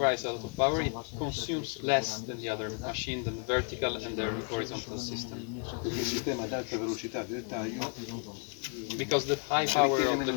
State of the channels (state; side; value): quieter; right; 39.7 dB